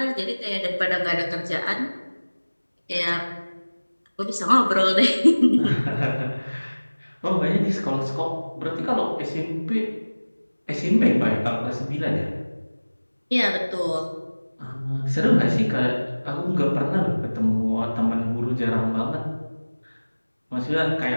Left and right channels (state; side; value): inverted; both; correlation -1.00